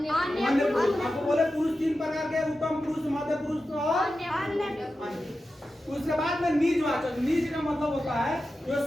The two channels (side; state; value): both; normal; correlation 0.92